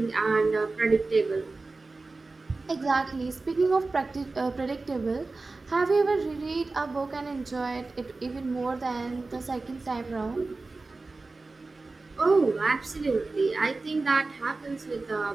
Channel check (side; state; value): left; quieter; 3.6 dB